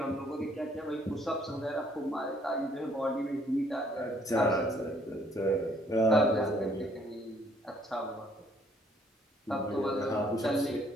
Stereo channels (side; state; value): both; normal; correlation 0.65